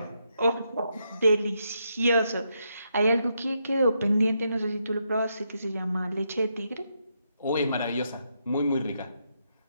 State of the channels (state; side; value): inverted; both; correlation -0.80